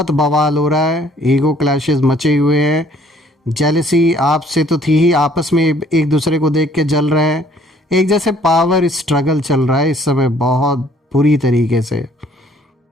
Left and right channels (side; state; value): both; normal; correlation 0.60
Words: बवाल हो रहा है, ईगो क्लैशेस मचे हुए हैं। जेलसी आपसे तो थी ही, आपस में एक दूसरे को देख के जल रहे हैं। एक जैसे पावर स्ट्रगल चल रहा है इस समय बहुत बुरी तरीके से।